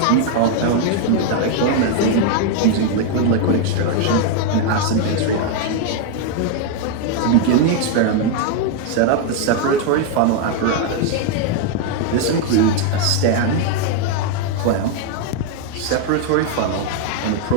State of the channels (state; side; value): different; both; correlation 0.01